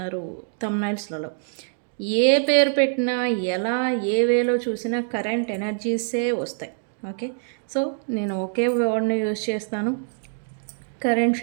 థంబ్నైల్స్లలో. ఏ పేరు పెట్టినా, ఎలా ఏ వేలో చూసినా కరెంట్ ఎనర్జీసే వస్తాయి. ఓకే, సో నేను ఒకే వర్డ్ని యూజ్ చేస్తాను, కరెంట్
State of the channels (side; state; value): left; silent; digital silence